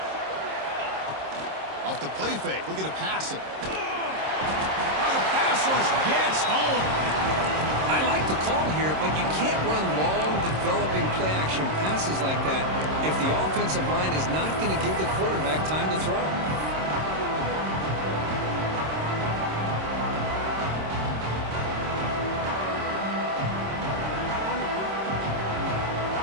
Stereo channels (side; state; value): left; late; 26 ms